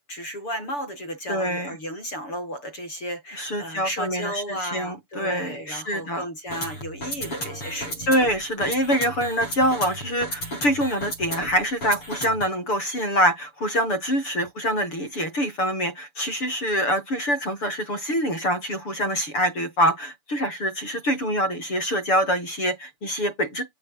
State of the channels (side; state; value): right; late; 6.9 ms